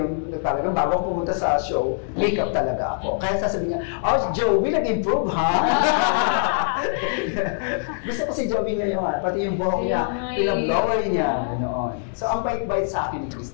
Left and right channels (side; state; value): right; silent; digital silence